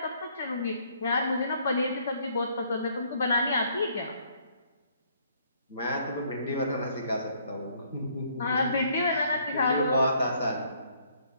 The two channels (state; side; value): inverted; both; correlation -0.65